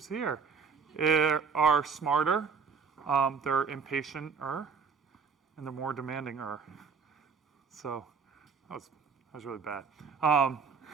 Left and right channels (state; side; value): quieter; left; 5.6 dB